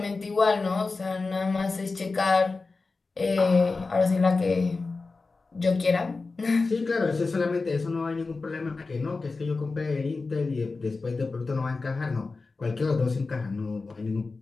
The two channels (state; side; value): quieter; right; 3.9 dB